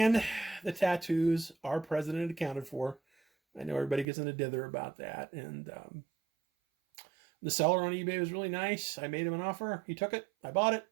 the tattoos are present and accounted for. I know everybody gets in a dither about that, and the seller on eBay was really nice. I made him an offer. He took it. I bought it.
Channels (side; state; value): left; drops out; at 4.0 s